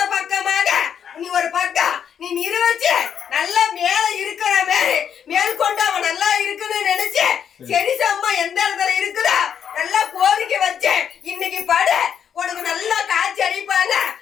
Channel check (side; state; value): right; quieter; 8.3 dB